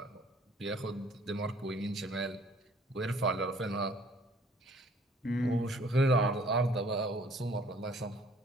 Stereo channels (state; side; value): normal; both; correlation 0.57